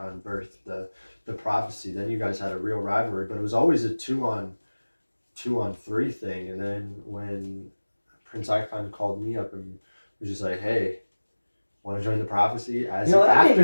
birthed the Prophecy. Then you guys had a real rivalry, but it was always a 2-on-3 thing. And then when Prince Icon called me up and was just like, "Hey, want to join the Prophecy?" That made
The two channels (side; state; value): both; inverted; correlation -1.00